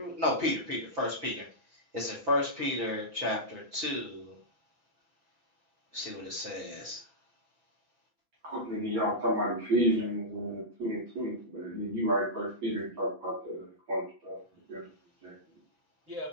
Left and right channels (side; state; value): left; late; 6.0 ms